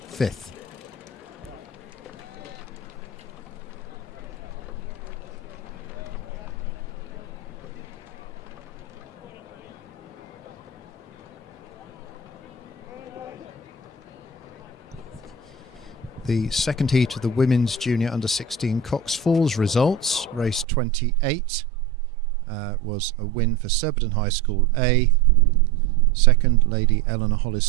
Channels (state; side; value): drops out; left; at 20.7 s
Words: 5th. The second heat of the Women's Junior Under-16 Cox Falls results. Race 28 was a win for Surbiton High School A, second Lady Eleanor Hollis